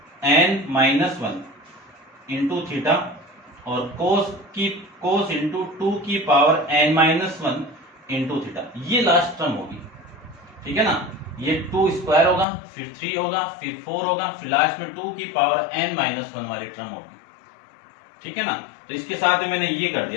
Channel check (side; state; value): right; drops out; at 12.5 s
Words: n-1 इंटू थीटा और कोस इंटू 2 की पावर n-1 इंटू थीटा, ये लास्ट टर्म होगी, ठीक है ना। ये 2 स्क्वायर होगा, फिर 3 होगा, फिर 4 होगा, फिर लास्ट में 2 की पावर n-1 वाली टर्म होगी, ठीक है ना। तो इसके साथ ही मैंने ये कर